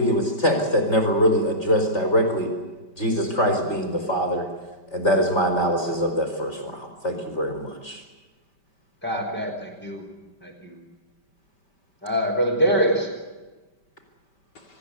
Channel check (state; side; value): late; right; 5.1 ms